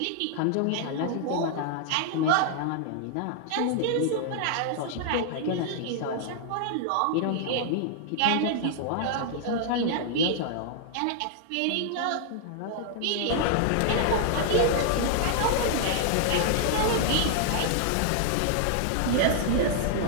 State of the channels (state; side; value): different; both; correlation -0.01